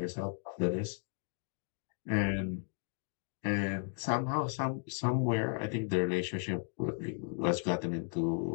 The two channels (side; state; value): right; silent; 54 dB below the other